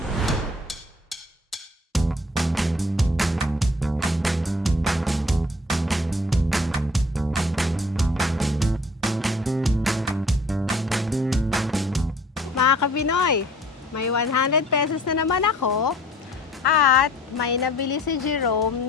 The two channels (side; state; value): both; normal; correlation 0.53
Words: Mga Kapinoy, may 100 pesos na naman ako at may nabili si Jerome